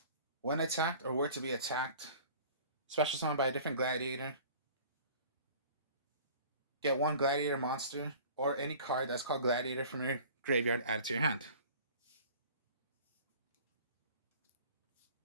When attacked or were to be attacked, special summoned by a different gladiator, get one gladiator monster or any card that's called gladiator from your graveyard added to your hand.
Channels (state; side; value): inverted; both; correlation -0.46